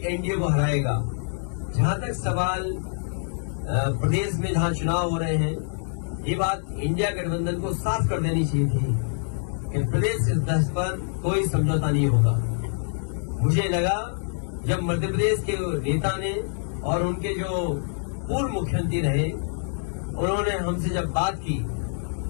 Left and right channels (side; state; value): right; silent; 56 dB below the other